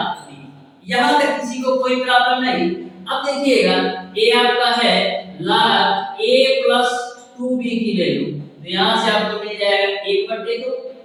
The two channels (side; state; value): both; identical; correlation 1.00